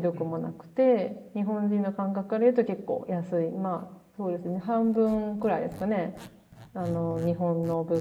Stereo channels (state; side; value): identical; both; correlation 1.00